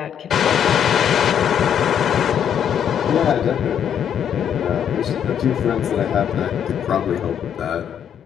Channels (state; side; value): quieter; right; 8.9 dB